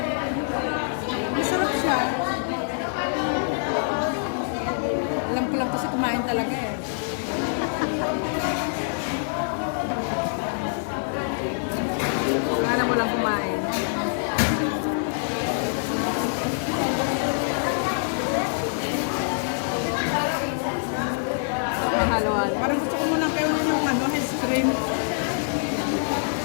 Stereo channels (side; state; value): right; silent; digital silence